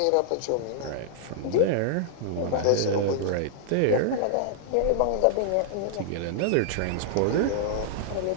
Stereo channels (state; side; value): different; both; correlation -0.01